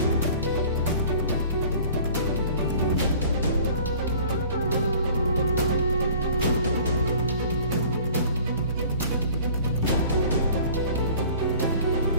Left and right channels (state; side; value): inverted; both; correlation -0.49